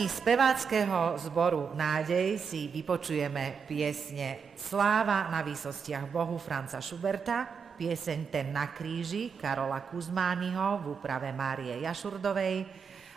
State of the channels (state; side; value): quieter; left; 6.1 dB